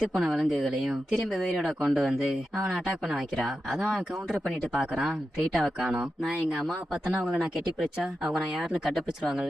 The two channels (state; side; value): normal; both; correlation 0.90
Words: போன விலங்குகளையும் திரும்ப உயிரோட கொண்டு வந்து அவனை அட்டாக் பண்ண வைக்கிறா. அதான் அவன் கவுண்டர் பண்ணிட்டு பாக்குறான், ரீட்டாவை காணோம். நான் எங்க அம்மா பார்த்தனா அவங்களை நான் கெட்டி பிடிச்சா அவங்க நான் யாருன்னு